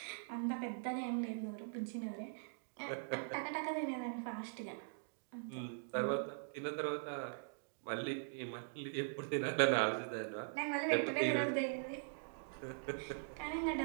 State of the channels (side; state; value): left; silent; digital silence